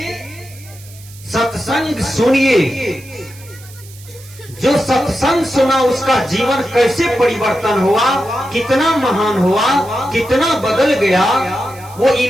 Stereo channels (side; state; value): right; noise; hiss, 21 dB below the sound